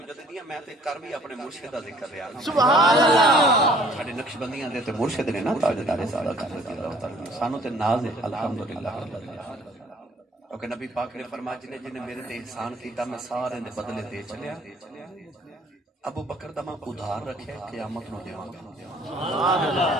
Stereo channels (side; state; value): both; normal; correlation 0.57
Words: میں تے کر بھی اپنے مرشد دا ذکر رہا سبحان اللہ ساڈے نقشبندیاں دے تے مرشد نے نا تاجدار صداقت رضی اللہ تعالی سانو تے ناز ہے الحمدللہ کیونکہ نبی پاک نے فرمایا جن میرے تے احسان کیتا میں سارے دے بدلے دے چلیا ابو بکر دا میں ادھار رکھے قیامت نو دیواں گا سبحان